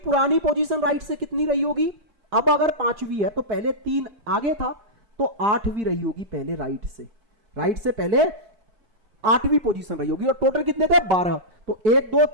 पोजीशन राइट से कितनी रही होगी? अब अगर 5वीं है तो पहले 3 आगे था तो 8वीं रही होगी पहले राइट से पहले 8वीं पोजीशन रही होगी। और टोटल कितने थे? 12। तो 1 2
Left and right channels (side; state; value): left; late; 4.6 ms